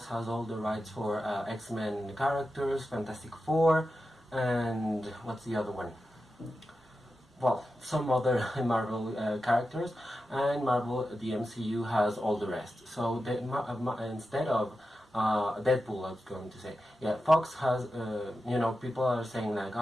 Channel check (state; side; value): normal; both; correlation 0.91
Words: has all the rights for X-Men characters, Fantastic Four, and what's the other one? Well, some other Marvel characters, and Marvel, the MCU, has all the rest. So instead of Deadpool, I was going to say, yeah, Fox has, people are saying like,